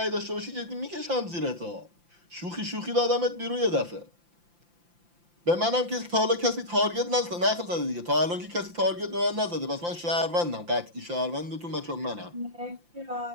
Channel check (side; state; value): left; late; 5.8 ms